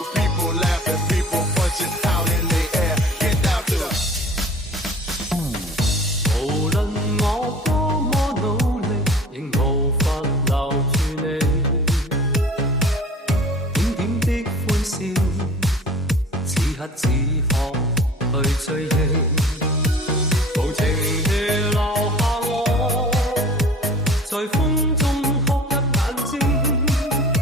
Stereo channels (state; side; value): normal; both; correlation 0.45